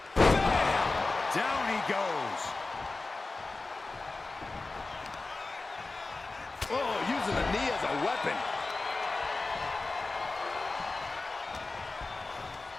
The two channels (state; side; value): quieter; right; 3.5 dB